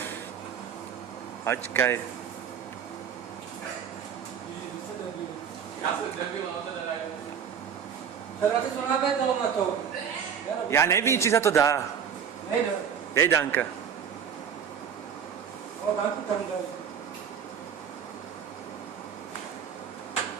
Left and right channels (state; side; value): quieter; left; 7.7 dB